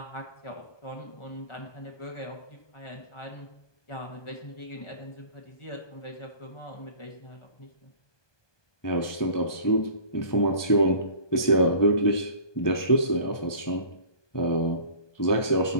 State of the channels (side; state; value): right; late; 1.2 ms